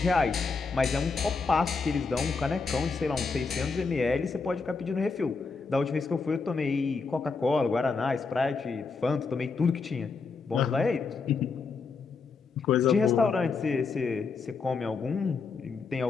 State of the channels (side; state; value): right; quieter; 4.6 dB